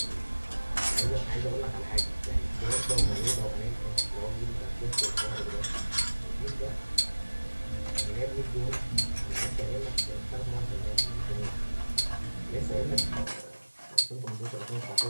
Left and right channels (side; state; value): both; inverted; correlation -1.00